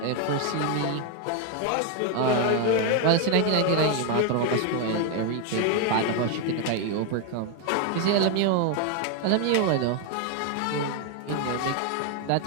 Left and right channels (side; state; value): both; different; correlation 0.01